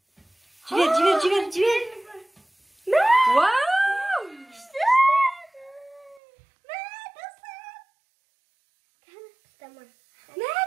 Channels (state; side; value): drops out; left; at 6.2 s